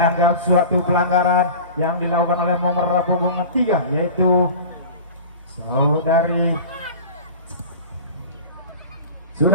suatu pelanggaran yang dilakukan oleh nomor punggung 3 yaitu saudari.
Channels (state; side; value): inverted; both; correlation -0.35